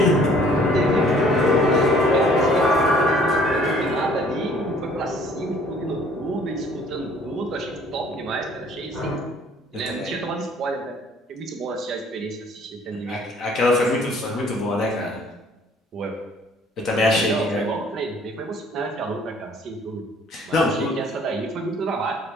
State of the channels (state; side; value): normal; both; correlation 0.57